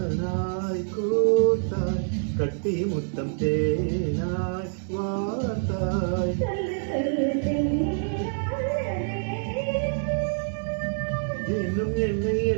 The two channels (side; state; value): left; silent; digital silence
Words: கோத்தாய் கட்டி முத்தம் தேனாய் வார்த்தாய் இன்னும் என்னை